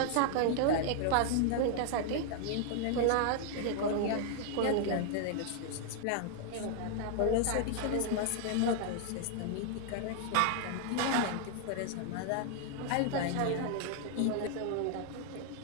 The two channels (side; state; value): both; different; correlation 0.00